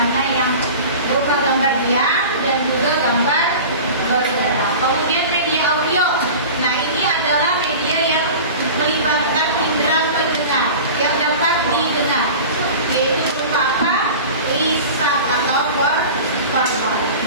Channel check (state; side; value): inverted; both; correlation -0.35